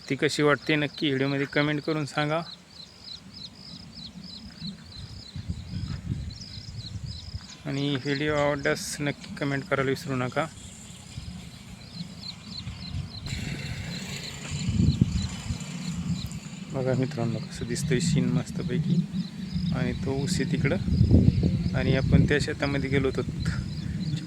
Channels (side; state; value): both; identical; correlation 1.00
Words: कशी वाटते नक्की व्हिडिओमध्ये कमेंट करून सांगा. आणि व्हिडिओ आवडल्यास नक्की कमेंट करायला विसरू नका. बघा मित्रांनो कसं दिसतंय सीन मस्तपैकी. आणि तो ऊस आहे तिकडं आणि आपण त्या शेतामध्ये गेलो होतो.